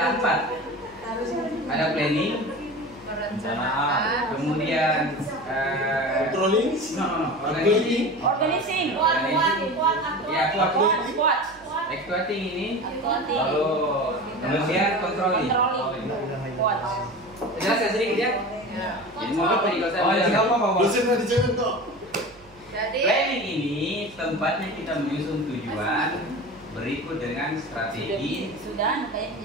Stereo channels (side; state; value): right; noise; hum, 26 dB below the sound